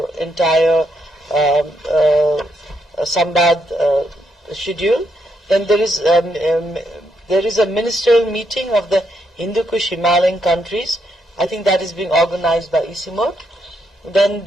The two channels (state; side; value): normal; both; correlation 0.78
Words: entire Sambaad schedule. Then there is a ministerial meeting of the Hindu Kush Himalayan countries. I think that is being organized by ICIMOD.